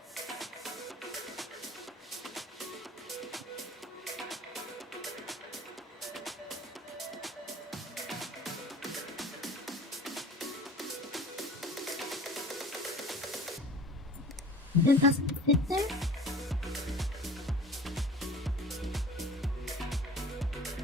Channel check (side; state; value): both; normal; correlation 0.43